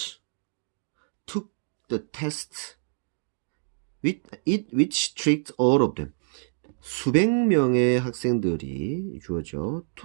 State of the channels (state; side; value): silent; left; digital silence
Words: took the test which tricked all of them. 수백 명의 학생들이 주어져